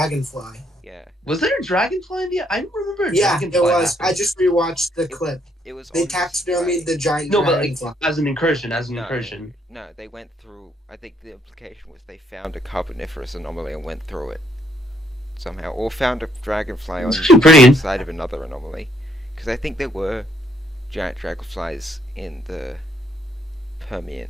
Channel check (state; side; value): normal; both; correlation 0.70